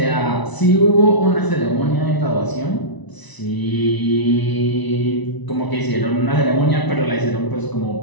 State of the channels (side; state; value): right; late; 1.0 ms